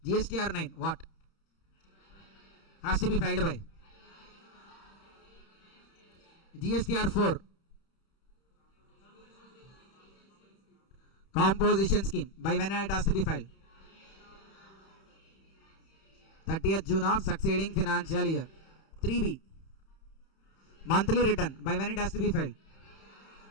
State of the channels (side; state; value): right; late; 31 ms